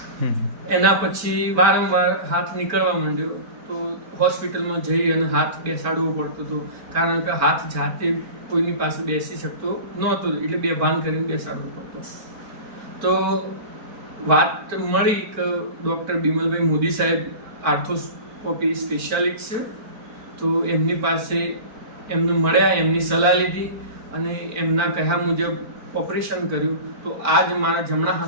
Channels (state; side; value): late; left; 4.4 ms